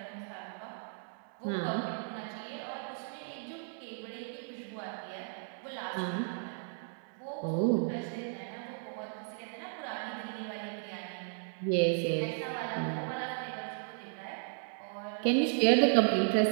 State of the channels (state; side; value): silent; left; digital silence